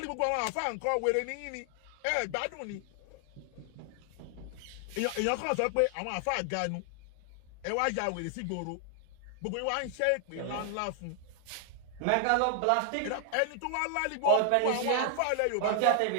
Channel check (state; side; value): different; both; correlation 0.00